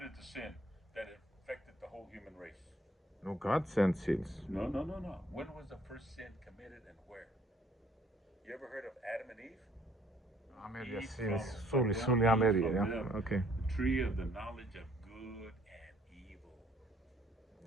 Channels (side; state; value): both; normal; correlation 0.61